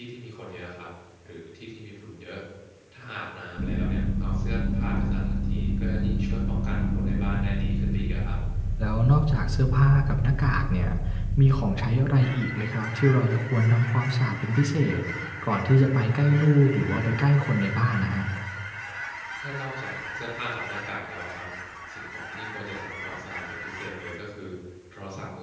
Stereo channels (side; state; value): both; identical; correlation 1.00